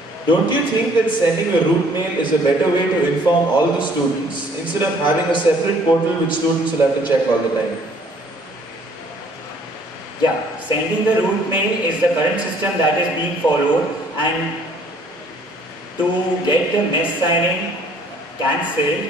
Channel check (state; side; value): normal; both; correlation 0.59